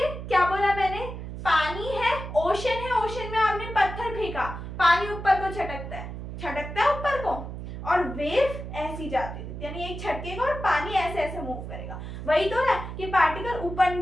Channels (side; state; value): right; noise; hum, 8 dB below the sound